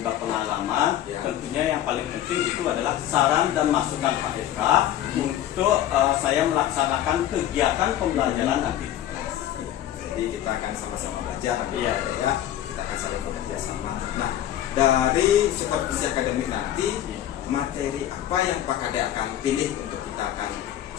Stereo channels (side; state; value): right; quieter; 11.9 dB